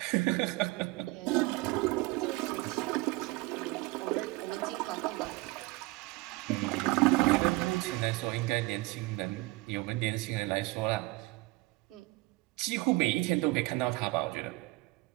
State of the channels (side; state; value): left; quieter; 21.8 dB